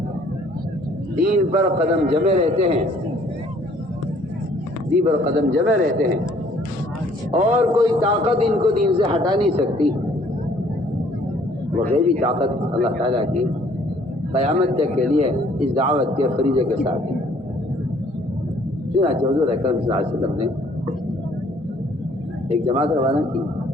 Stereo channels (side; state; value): both; normal; correlation 0.60